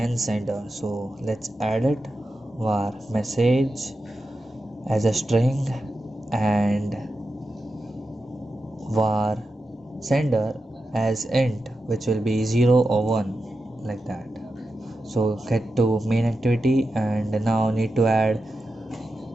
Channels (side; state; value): both; normal; correlation 0.90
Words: sender. So let's add it var message as a string and var sender as int, which will be 0 or 1, like that. So get to main activity and now need to add